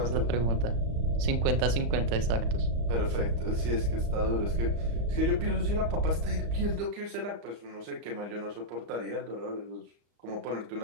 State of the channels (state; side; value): late; left; 35 ms